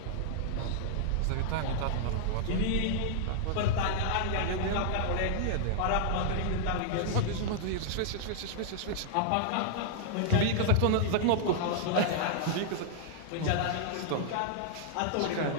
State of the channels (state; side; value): different; both; correlation -0.01